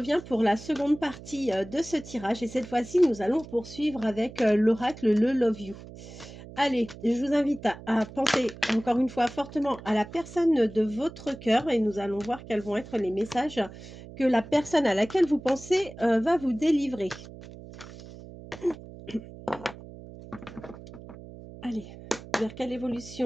pour la seconde partie de ce tirage et cette fois-ci, nous allons poursuivre avec l'oracle Le Love You. Allez, je vous invite à penser encore une fois fortement à la personne de votre cœur et nous allons voir quels vont être les messages que la personne à laquelle vous pensez va vous délivrer. Allez, vers quelle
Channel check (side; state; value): right; noise; hum, 16 dB below the sound